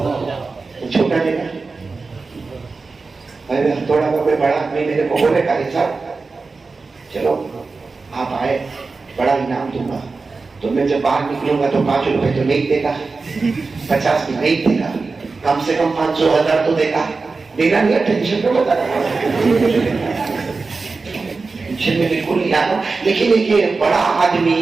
چھوٹا دے گا، تھوڑا کا کوئی بڑا آدمی میرے کو بولے قاری صاحب چلو آپ آئے بڑا انعام دوں گا، تو میں جب باہر نکلوں گا تو 5 روپے تو نہیں دے گا، 50 بھی نہیں دے گا، کم سے کم 500 1000 تو دے گا، دینا نہیں ہے، ٹینشن پہ بتا رہا ہوں، ٹینشن میں بالکل نہیں آنا۔ لیکن یہ بڑا آدمی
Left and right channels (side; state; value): left; quieter; 4.1 dB